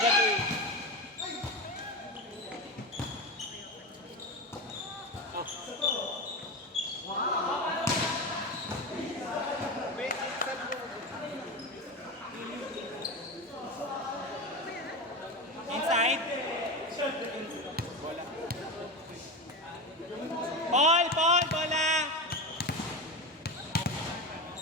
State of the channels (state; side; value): normal; both; correlation 0.21